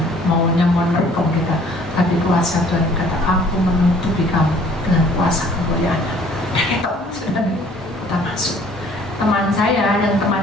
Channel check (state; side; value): normal; both; correlation 0.56